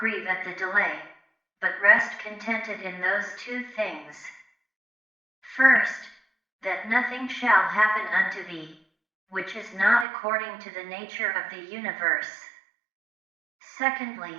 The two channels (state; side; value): drops out; left; at 10.1 s